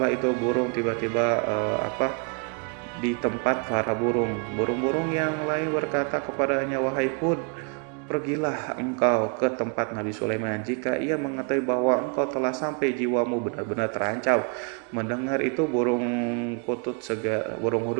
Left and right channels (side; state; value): left; quieter; 37.6 dB